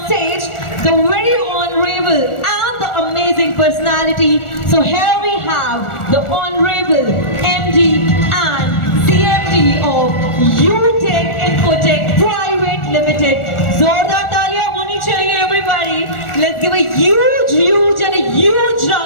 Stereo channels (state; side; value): late; right; 1.4 ms